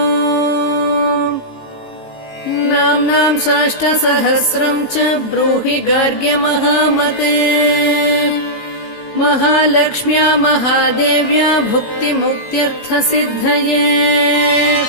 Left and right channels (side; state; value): right; late; 18 ms